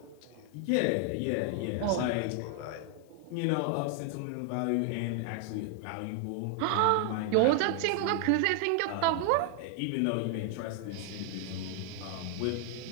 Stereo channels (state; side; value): different; both; correlation 0.00